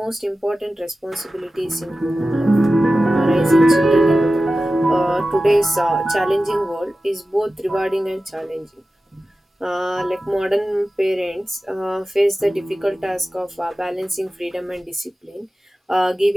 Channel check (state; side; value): normal; both; correlation 0.94